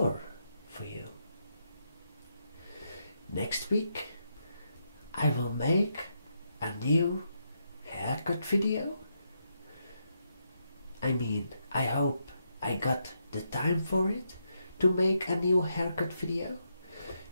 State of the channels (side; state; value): both; inverted; correlation -0.81